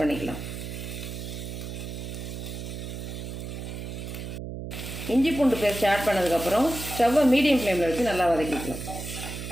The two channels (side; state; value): right; noise; hum, 7 dB below the sound